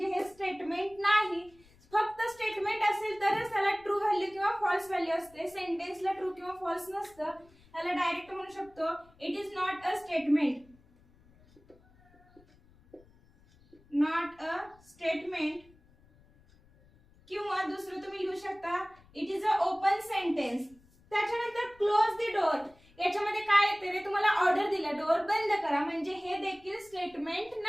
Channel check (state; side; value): noise; left; rumble, 28 dB below the sound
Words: हे स्टेटमेंट नाही. फक्त स्टेटमेंट असेल तरच त्याला ट्रू व्हॅल्यू किंवा फॉल्स व्हॅल्यू असते. सेंटेन्सला ट्रू किंवा फॉल्स नसतं. त्याला डायरेक्ट म्हणू शकतो it is not a statement. Not a statement. किंवा दुसरं तुम्ही लिहू शकता it is a open sentence. त्याच्यानंतर क्लोज द डोर. याच्यामध्ये काय येते रे, तुम्हाला ऑर्डर दिला डोर बंद करा म्हणजे हे देखील स्टेटमेंट